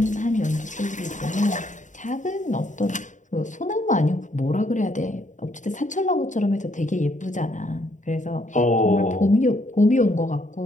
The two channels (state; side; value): late; right; 0.36 ms